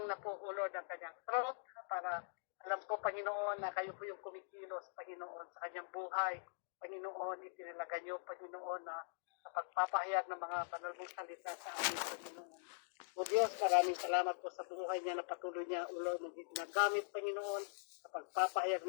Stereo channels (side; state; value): right; silent; digital silence